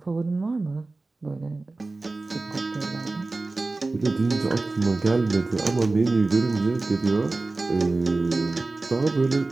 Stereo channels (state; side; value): quieter; left; 3.4 dB